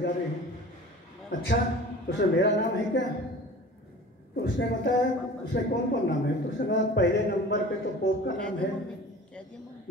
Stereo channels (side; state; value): both; normal; correlation 0.41